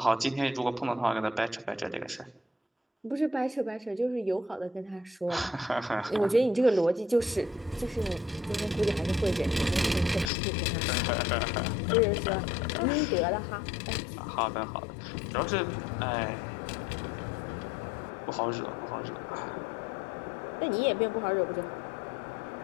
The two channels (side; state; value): right; drops out; at 10.3 s